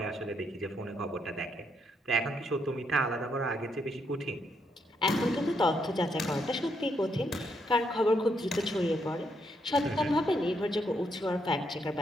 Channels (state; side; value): normal; both; correlation 0.76